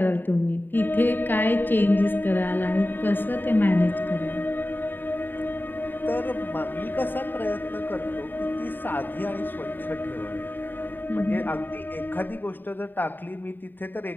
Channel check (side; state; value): right; late; 0.092 ms